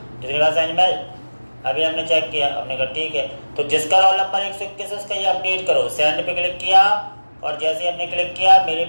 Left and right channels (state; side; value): inverted; both; correlation -1.00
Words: इतनी बात समझ में। अभी हमने चेक किया, हमने कहा ठीक है, तो जिसका रोल नंबर 121 उसका ये अपडेट करो। सेंड पे क्लिक किया, और जैसे ही हमने क्लिक किया मेरे